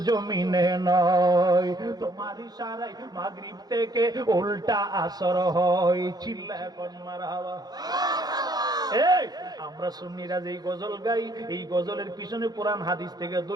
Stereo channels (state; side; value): late; left; 0.19 ms